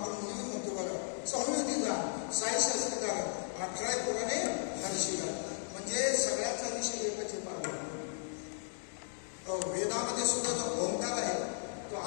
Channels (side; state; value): right; silent; digital silence